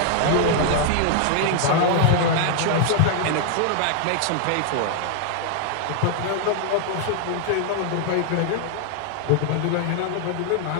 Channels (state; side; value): different; both; correlation 0.00